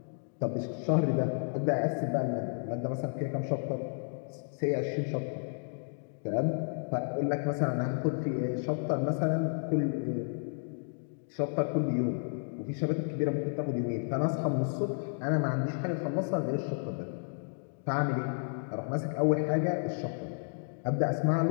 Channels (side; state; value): right; silent; digital silence